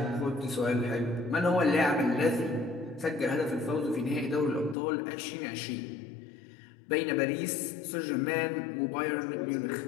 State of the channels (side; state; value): right; drops out; at 4.8 s